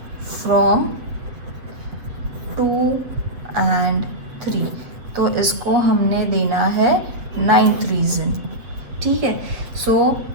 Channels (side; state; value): left; late; 7.6 ms